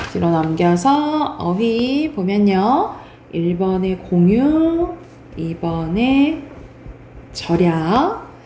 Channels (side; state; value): both; identical; correlation 1.00